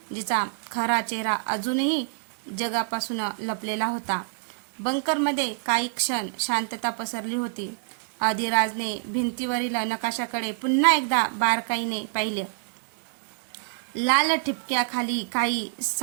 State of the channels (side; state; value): left; silent; digital silence